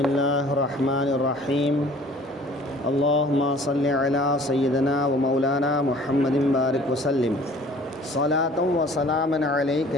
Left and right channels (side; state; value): both; normal; correlation 0.51